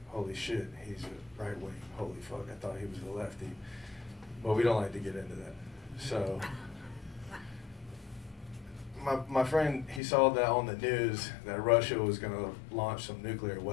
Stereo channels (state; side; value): drops out; right; at 10.0 s